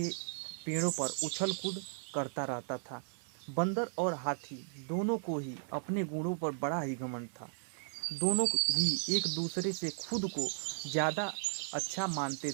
पेड़ों पर उछल कूद करता रहता था। बंदर और हाथी दोनों को ही अपने गुणों पर बड़ा ही घमंड था। दोनों ही एक दूसरे से खुद को ज़्यादा अच्छा मानते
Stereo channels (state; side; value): silent; left; 54 dB below the other